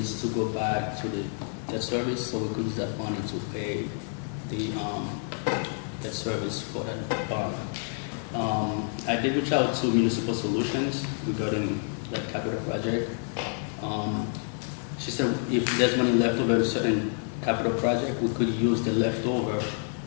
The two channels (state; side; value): silent; right; 55 dB below the other